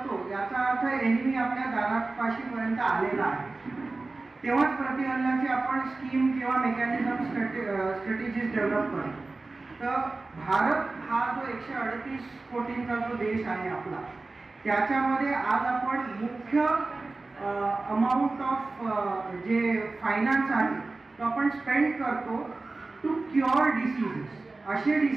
याचा अर्थ एनिमी आपल्या दारापाशीपर्यंत आलेला आहे, तेव्हाच प्रतिहल्ल्याची आपण स्कीम किंवा मेकॅनिझम स्ट्रॅटेजीज डेव्हलप करतो। तर भारत हा जो 138 कोटींचा जो देश आहे आपला, त्याच्यामध्ये आज आपण मुख्य अमाऊंट ऑफ जे फायनान्स आहे तो आपण स्पेंड करतो टू क्युअर डिसीजेस, असे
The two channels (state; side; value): quieter; left; 3.4 dB